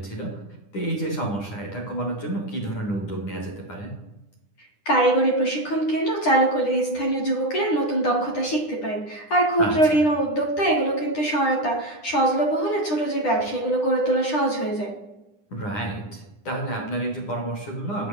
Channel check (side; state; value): right; late; 9.9 ms